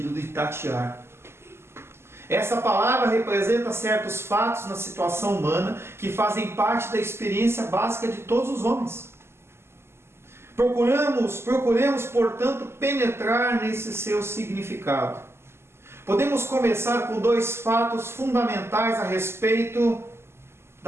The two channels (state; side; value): late; left; 0.12 ms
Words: de tatear. Essa palavra representa certos fatos na situação humana que fazem parte da experiência básica de todos os homens. Procuremos, portanto, penetrar nesse seu significado. Podemos começar com 2 fatos fundamentais a respeito